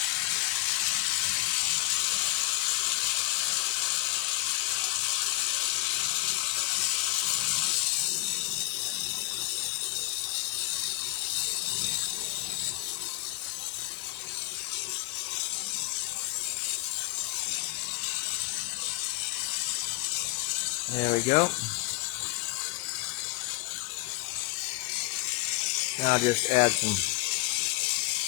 There we go. Now I'll just add some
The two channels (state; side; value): quieter; right; 20.5 dB